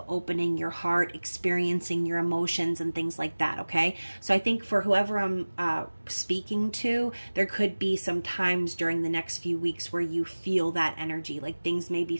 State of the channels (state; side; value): inverted; both; correlation -1.00